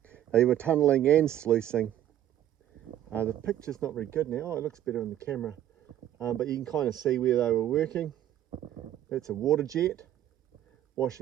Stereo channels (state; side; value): quieter; left; 12.0 dB